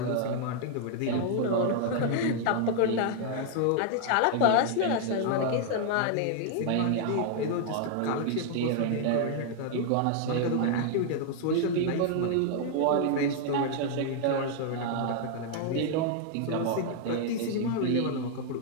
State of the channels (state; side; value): different; both; correlation 0.00